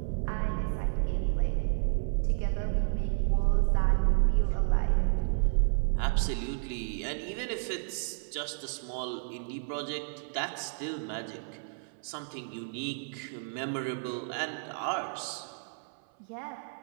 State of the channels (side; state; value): left; silent; 57 dB below the other